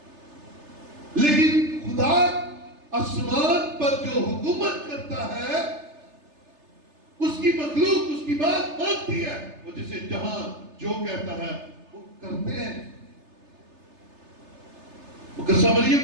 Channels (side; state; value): left; late; 3.3 ms